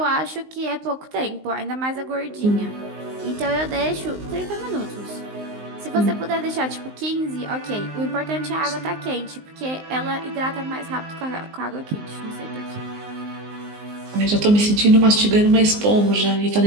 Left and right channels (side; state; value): left; late; 19 ms